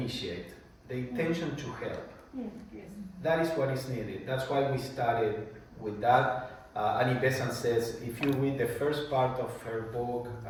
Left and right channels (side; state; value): both; identical; correlation 1.00